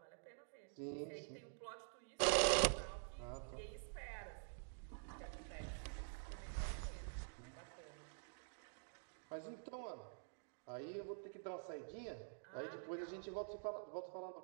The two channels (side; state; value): left; silent; digital silence